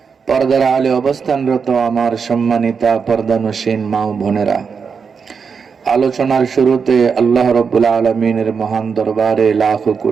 পর্দার আলে অবস্থানরত আমার সম্মানিতা পর্দানশীন মা ও বোনেরা আলোচনার শুরুতে আল্লাহ রাব্বুল আলামিনের মহান দরবারে লাখ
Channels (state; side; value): quieter; left; 5.9 dB